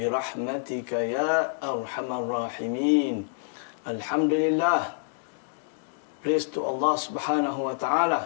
rahmatika ya arhamar rahimin. Alhamdulillah. Praise to Allah Subhanahu wa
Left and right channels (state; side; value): silent; right; digital silence